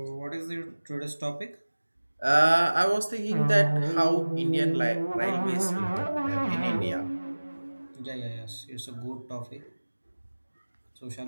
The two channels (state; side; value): inverted; both; correlation -1.00